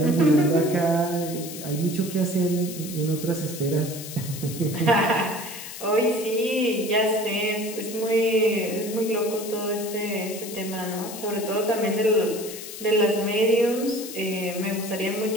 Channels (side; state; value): left; noise; hiss, 11 dB below the sound